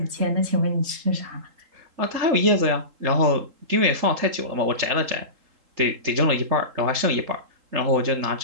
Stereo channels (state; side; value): late; left; 3.7 ms